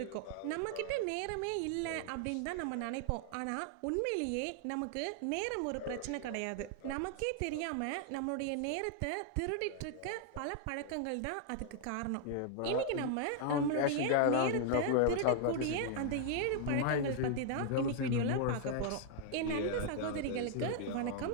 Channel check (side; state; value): both; different; correlation -0.01